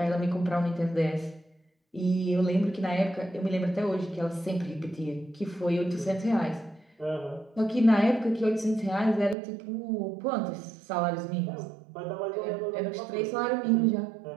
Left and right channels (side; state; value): left; drops out; at 9.3 s